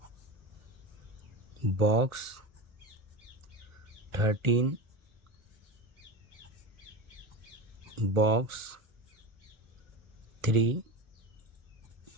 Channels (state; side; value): late; left; 1.4 ms